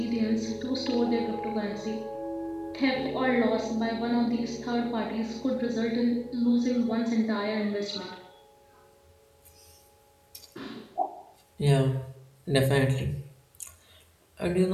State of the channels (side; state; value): both; identical; correlation 1.00